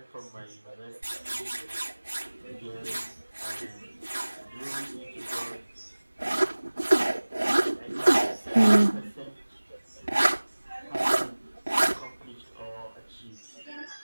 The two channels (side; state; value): both; inverted; correlation -1.00